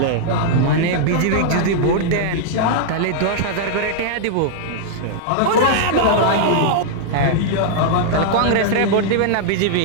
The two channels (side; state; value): both; different; correlation -0.01